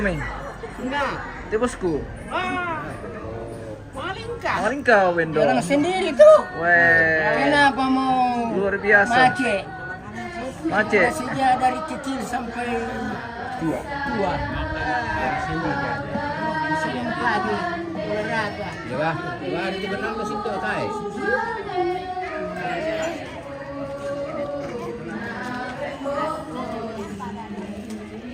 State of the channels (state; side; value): identical; both; correlation 1.00